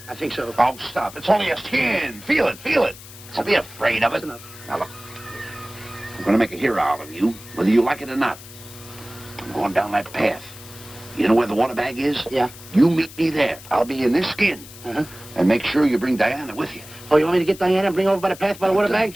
I think so. Oh, stop. It's only a skin. Feel it, feel it. Don't be afraid of it. That's enough. Now, look. I'm going to make a hero out of you, whether you like it or not. I'm going down that path. You know where the water bag is? Yeah. You meet me there. I'll be in this skin. Uh-huh. And make sure you bring Diana with you. Oh, you want me to get Diana and bring her over by the path by the water bag?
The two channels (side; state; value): left; noise; hiss, 17 dB below the sound